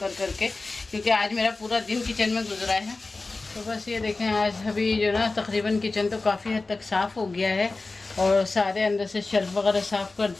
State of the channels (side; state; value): right; quieter; 3.5 dB